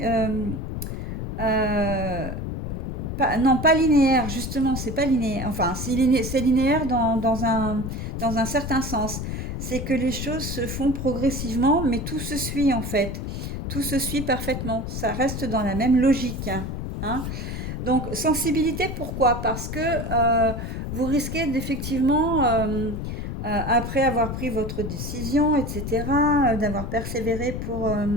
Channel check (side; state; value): left; noise; rumble, 5 dB below the sound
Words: euh, non, pas linéaires, justement, c'est pas linéaire. Enfin, c'est linéaire dans un certain sens. C'est que les choses se font progressivement, mais tout se suit en fait. Tout se suit parfaitement. Ça reste dans la même logique, hein. Donc, sensibilité, pourquoi? Parce que vous risquez d'effectivement, après avoir pris votre décision, etc., d'avoir persévéré